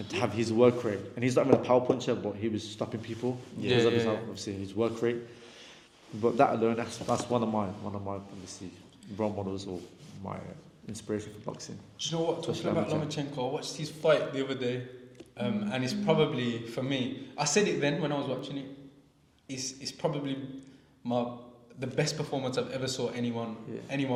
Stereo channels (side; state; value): both; identical; correlation 1.00